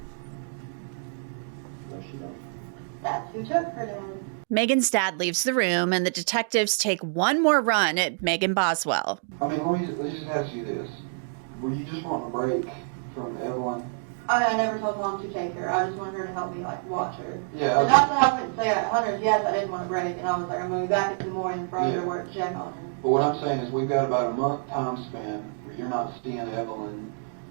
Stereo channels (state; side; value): silent; left; digital silence